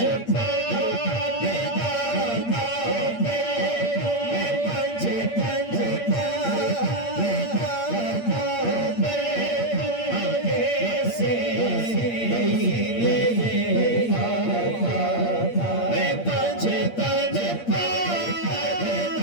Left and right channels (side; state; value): right; late; 8.6 ms